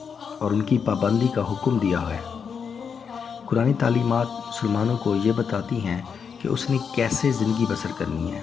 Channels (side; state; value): right; quieter; 6.5 dB